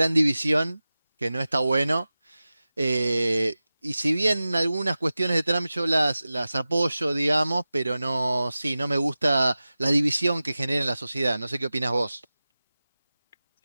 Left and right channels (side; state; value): both; inverted; correlation -0.96